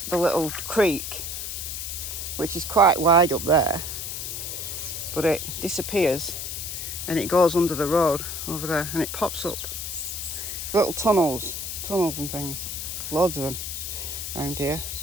little creek, which is quite wide up there, but it disappears and it goes under the road over there and it pops up. Little tunnels and things. Loads of them around here.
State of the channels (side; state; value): left; noise; hiss, 5 dB below the sound